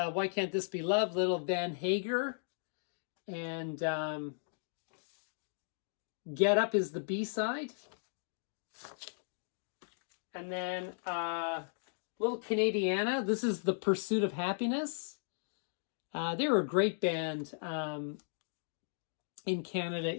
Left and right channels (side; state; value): right; silent; digital silence